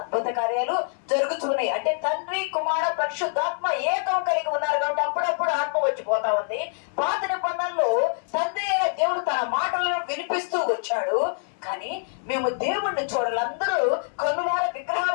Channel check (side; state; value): right; silent; 62 dB below the other